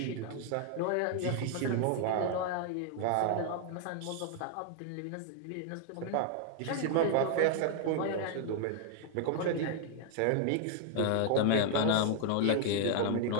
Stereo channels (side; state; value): both; different; correlation 0.00